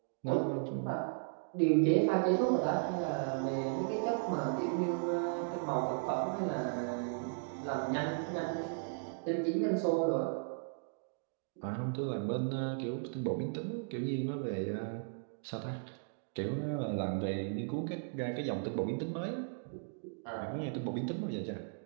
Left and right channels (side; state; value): left; silent; digital silence